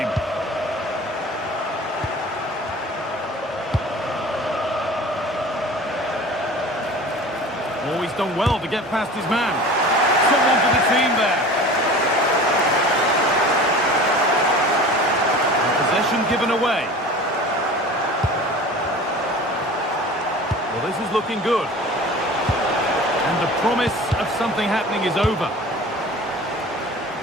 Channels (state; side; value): normal; both; correlation 0.40